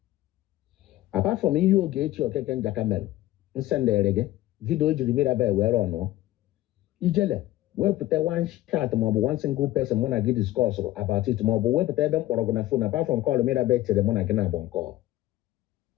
Apart from you get your cake and jacamel. Send the reggae. Video you Mirabel where or no. Ijele. We put one chat mob, one single person when I get discourse about it mob, we put them or on a phone apart from calling me back to the one I can have on call.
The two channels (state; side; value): quieter; right; 15.8 dB